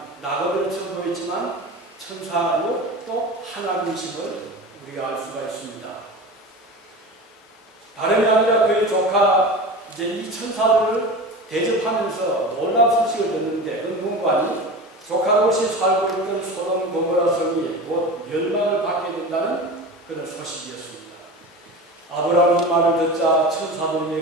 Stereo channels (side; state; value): both; normal; correlation 0.31